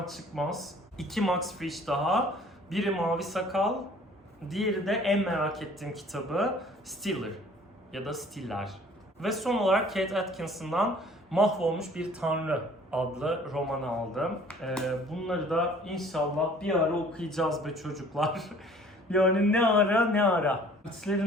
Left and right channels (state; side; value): normal; both; correlation 0.53